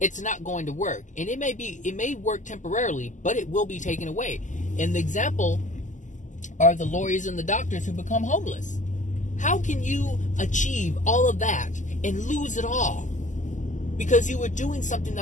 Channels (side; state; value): right; late; 0.36 ms